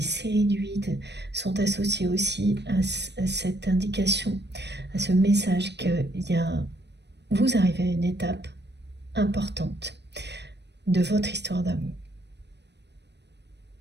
séries du 8 sont associées aussi à cette indication, à ce message que vous arrivez à une étape importante de votre histoire d'amour.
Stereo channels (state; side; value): late; left; 0.50 ms